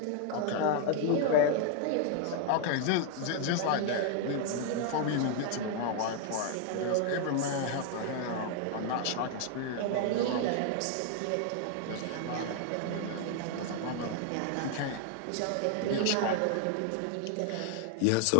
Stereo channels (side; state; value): both; different; correlation 0.00